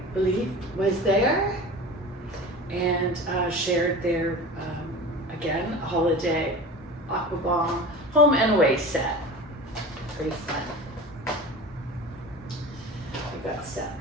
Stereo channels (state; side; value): normal; both; correlation 0.35